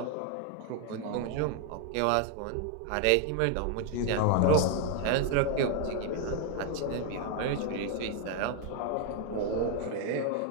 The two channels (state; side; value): different; both; correlation 0.00